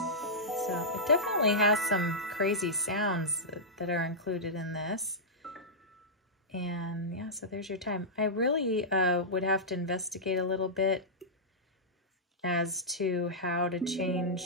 So it definitely has some crazy sounds that are included in this. And yeah, so there's your time. I really would have to investigate a little bit as to how to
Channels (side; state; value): both; normal; correlation -0.12